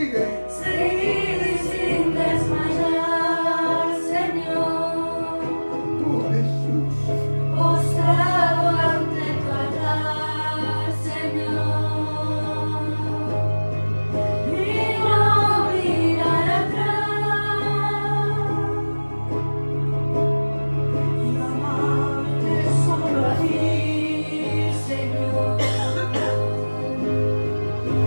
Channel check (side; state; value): both; inverted; correlation -1.00